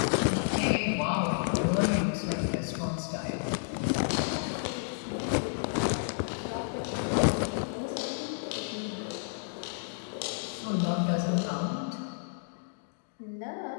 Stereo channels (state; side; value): silent; right; digital silence